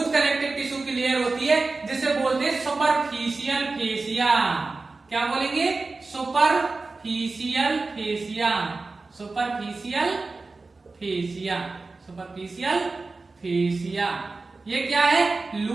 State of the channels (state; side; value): quieter; left; 3.7 dB